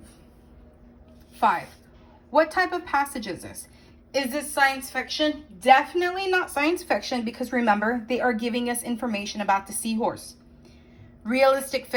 5, what type of passage is this? Is this science fiction? Definitely not science fiction, because remember, they are giving us information about the seahorse. Realistic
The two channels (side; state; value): both; identical; correlation 1.00